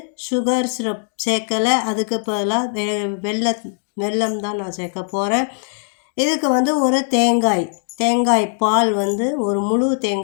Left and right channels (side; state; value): right; silent; 66 dB below the other